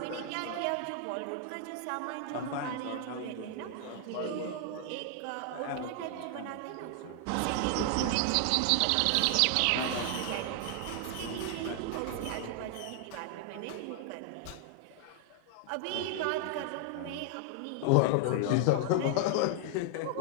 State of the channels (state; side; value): different; both; correlation 0.00